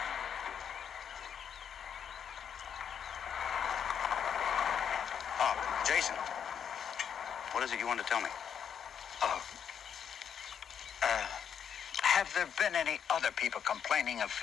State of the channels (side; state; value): right; quieter; 8.1 dB